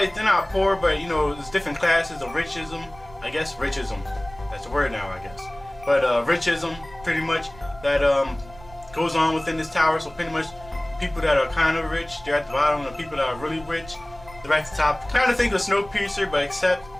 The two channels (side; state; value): right; noise; rumble, 20 dB below the sound